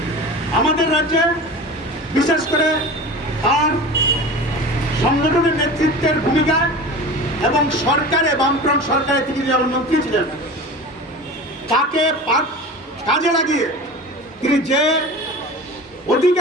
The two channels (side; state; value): both; normal; correlation 0.34